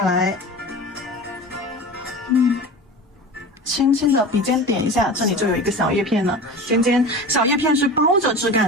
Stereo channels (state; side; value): normal; both; correlation 0.33